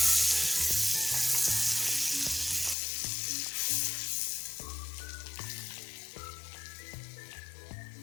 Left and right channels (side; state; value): right; drops out; at 2.8 s